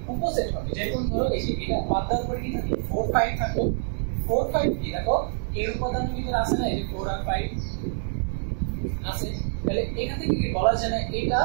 উপসেট হবে যেমন ধরো এই যে এটা বাদ দেওয়ার পরে কি থাকে 4 5 থাকো 4 5 কি দেখো এর উপাদানের ভিতরে আছে না এই যে 4 আর 5 আছে তাহলে এখান থেকে কি বলা যায় না এটা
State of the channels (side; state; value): left; silent; 61 dB below the other